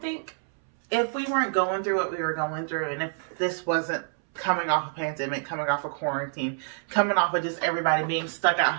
if we weren't going through what we were going through, and if this wasn't coming off a pandemic, coming off a quarantine, coming off of just everybody being stuck at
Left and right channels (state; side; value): silent; left; 60 dB below the other